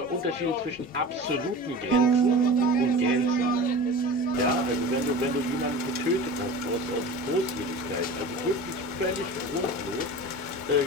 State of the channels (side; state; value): both; normal; correlation 0.35